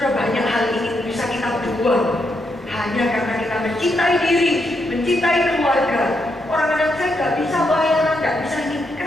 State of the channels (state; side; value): normal; both; correlation 0.80